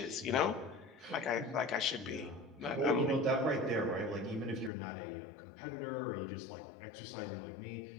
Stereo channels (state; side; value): drops out; right; at 4.7 s